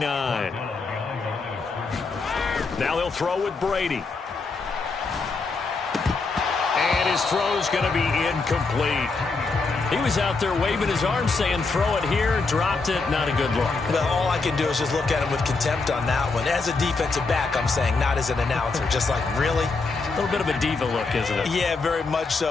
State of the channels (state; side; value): quieter; right; 4.1 dB